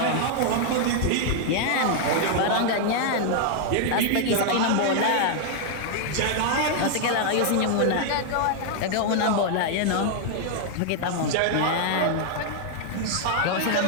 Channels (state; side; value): different; both; correlation 0.00